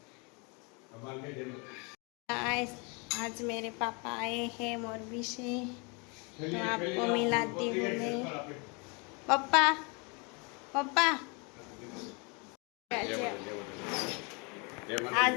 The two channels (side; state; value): right; quieter; 31.6 dB